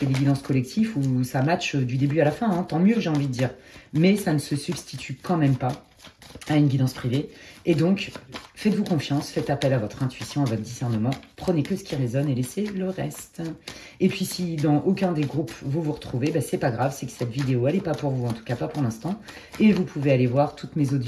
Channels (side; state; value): both; identical; correlation 1.00